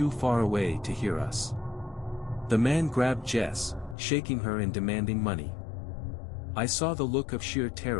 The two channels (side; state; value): right; drops out; at 4.0 s